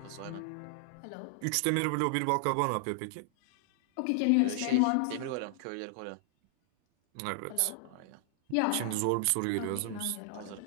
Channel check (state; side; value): different; both; correlation 0.00